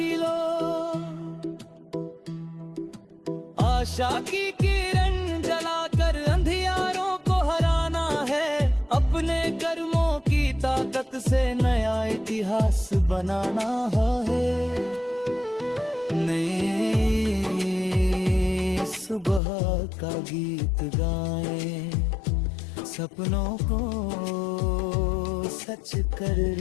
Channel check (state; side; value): drops out; right; at 19.4 s